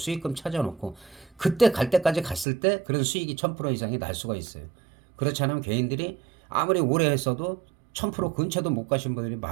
찾아놓고 그때 갈 때까지 갔을 때 그런 수익이 1000% 이상이 날 수가 있어요. 그렇지 않으면 개인들이 아무리 오래 했어도 1000% 근처도 못 가신 분들이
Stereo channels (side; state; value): left; drops out; at 2.5 s